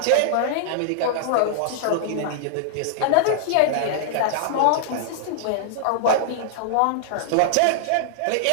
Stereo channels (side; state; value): both; different; correlation -0.01